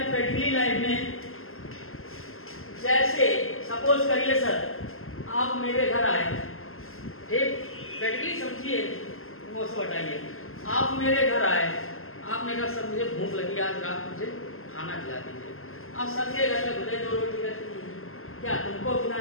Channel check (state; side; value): late; right; 0.62 ms